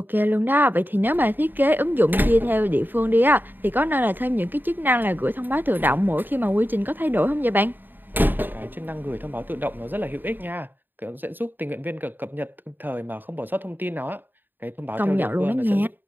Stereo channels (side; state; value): left; late; 0.092 ms